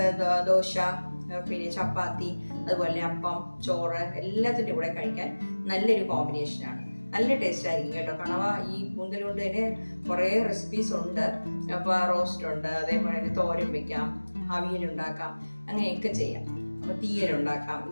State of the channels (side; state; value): both; inverted; correlation -1.00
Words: ദോശ, പിന്നെ ചപ്പാത്തി, അതുപോലെ അപ്പം, ചോറ് എല്ലാത്തിൻ്റെ കൂടെ കഴിക്കാൻ നല്ലൊരു കോമ്പിനേഷനാണ്. നല്ല ടേസ്റ്റ് ആയിരിക്കും കേട്ടോ. കണവ ഈ കൂന്തൽ കൊണ്ട് തന്നെ കുറേ റെസിപ്പീസ് ഉണ്ട്. അപ്പോൾ റോസ്റ്റ് ഉണ്ട്, അതേപോലെ തന്നെ തോരൻ വെക്കാം, അവിയലുണ്ടാക്കാം, അങ്ങനെയൊക്കെ ചെയ്യാം. അപ്പോൾ തീയലുണ്ടാക്കാം,